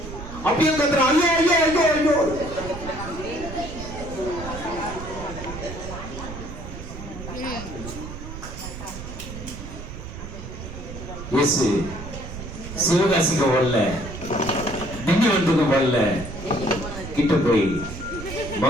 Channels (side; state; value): right; noise; rumble, 10 dB below the sound